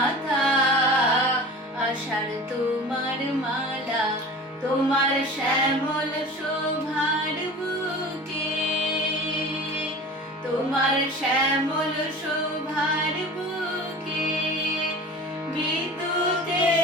আষাঢ় তোমার মালা, তোমার শ্যামল শোভার বুকে, তোমার শ্যামল শোভার বুকে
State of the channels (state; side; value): normal; both; correlation 0.38